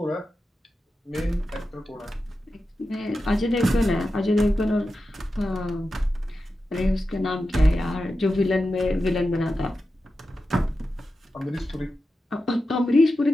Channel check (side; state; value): both; normal; correlation 0.91